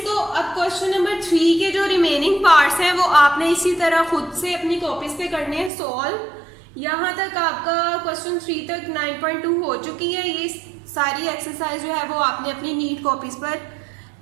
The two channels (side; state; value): left; drops out; at 5.7 s